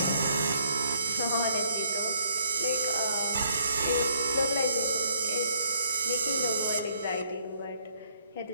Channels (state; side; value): inverted; both; correlation -0.66